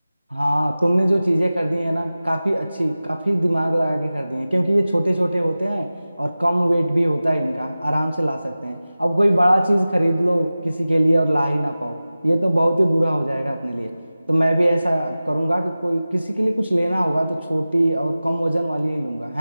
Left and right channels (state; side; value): inverted; both; correlation -0.97